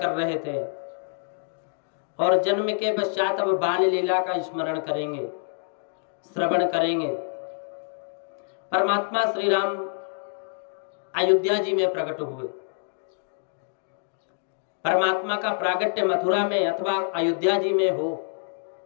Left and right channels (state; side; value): silent; right; digital silence